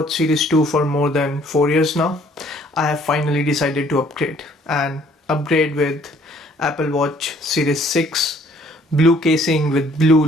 Series 2 for more than 4 years now, I have finally decided to upgrade with Apple Watch Series 6 blue casing with blue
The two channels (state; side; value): normal; both; correlation 0.60